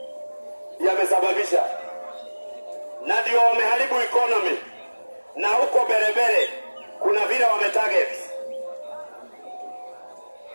yamesababisha. Na ndio wameharibu economy. Na huko berebere kuna vile wametarget.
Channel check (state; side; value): inverted; both; correlation -1.00